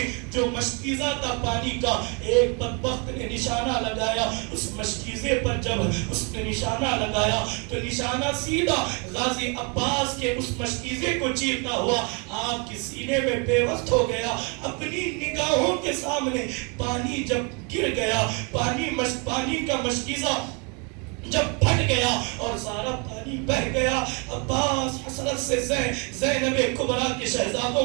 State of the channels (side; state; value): left; quieter; 33.3 dB